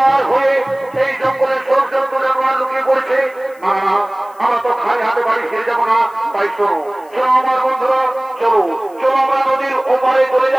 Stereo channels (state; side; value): noise; left; hiss, 30 dB below the sound